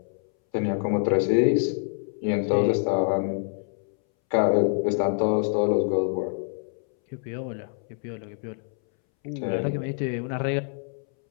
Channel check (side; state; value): right; silent; 61 dB below the other